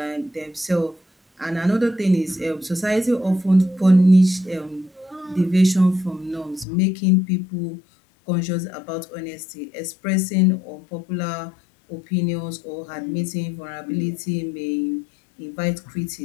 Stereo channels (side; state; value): right; drops out; at 6.7 s